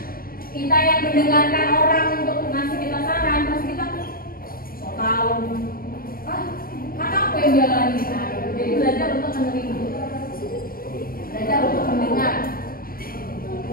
kita yang mendengarkan orang untuk ngasih kita saran, pasti kita so tau. Kan aku yang jalanin. Jadi belajar untuk menerima, belajar untuk mendengar.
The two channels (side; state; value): right; late; 0.43 ms